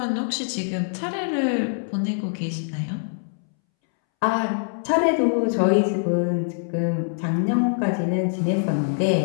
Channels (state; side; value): silent; right; 63 dB below the other